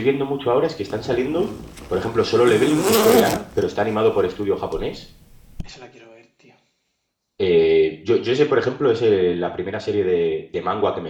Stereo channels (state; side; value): identical; both; correlation 1.00